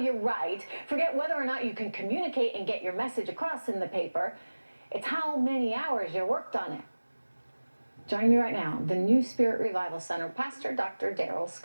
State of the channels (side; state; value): both; inverted; correlation -1.00